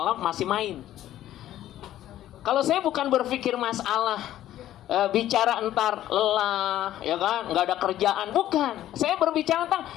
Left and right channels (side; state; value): right; quieter; 12.9 dB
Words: masih main. Kalau saya bukan berpikir masalah bicara entar lelah, ya kan, nggak ada kerjaan, bukan. Saya berbicara tentang